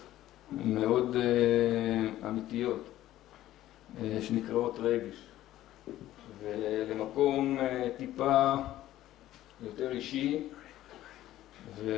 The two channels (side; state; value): right; quieter; 14.1 dB